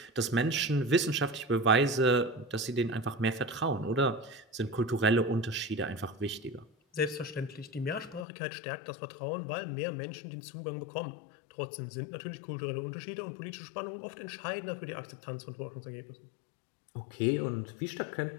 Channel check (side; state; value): right; drops out; at 8.2 s